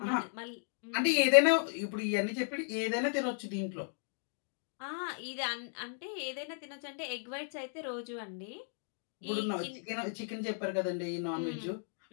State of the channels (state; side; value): silent; right; digital silence